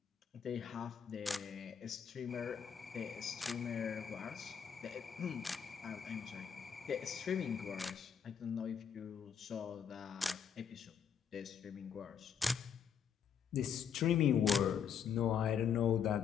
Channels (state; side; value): quieter; right; 7.5 dB